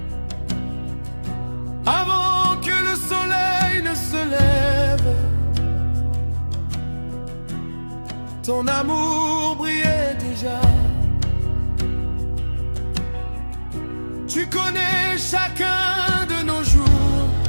ton amour brillait déjà. Tu connais chacun de nos jours,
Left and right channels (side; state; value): both; inverted; correlation -1.00